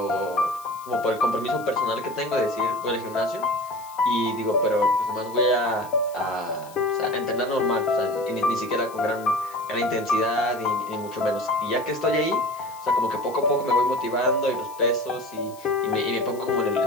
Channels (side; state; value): left; noise; hiss, 21 dB below the sound